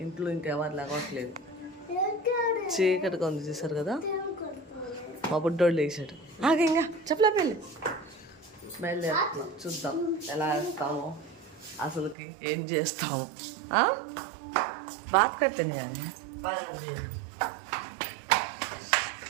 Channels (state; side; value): drops out; left; at 12.2 s